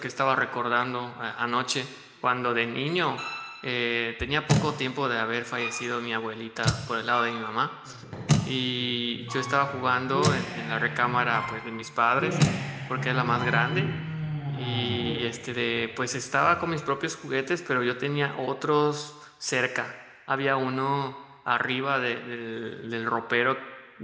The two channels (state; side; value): identical; both; correlation 1.00